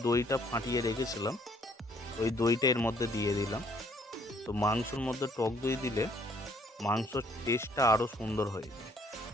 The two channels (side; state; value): both; normal; correlation 0.63